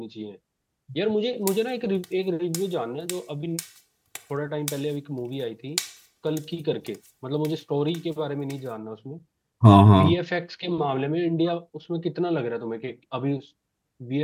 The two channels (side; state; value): both; identical; correlation 1.00